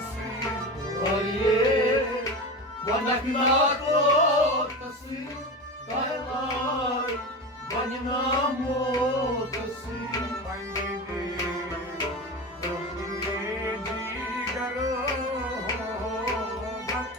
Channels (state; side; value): normal; both; correlation 0.25